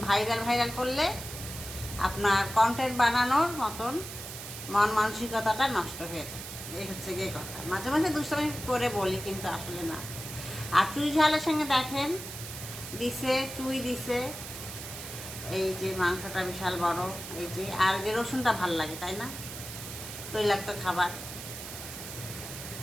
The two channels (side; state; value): right; noise; hiss, 10 dB below the sound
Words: ভাইরাল করলে আপনার কন্টেন্ট বানানোর মতন মন মানসিকতাটা নষ্ট হয়ে যায়। এই হচ্ছে গিয়ে কথা। মাঝে মাঝে দুষ্টামি করে বলি, কিন্তু আসলে না। আর চুই ঝালের সঙ্গে দেখেন দিছে, চুই দিছে, এই যে মাংসটা বিশাল বড়, এই যে আর যে রসুনটা ভাল লাগে, তাই না? তৈলাক্ত খাবার,